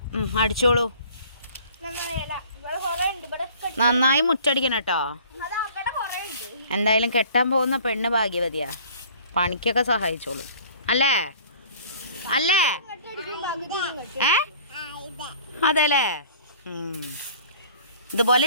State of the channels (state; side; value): inverted; both; correlation -0.50